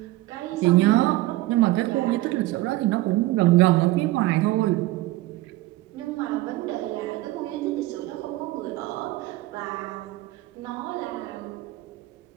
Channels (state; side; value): quieter; left; 17.8 dB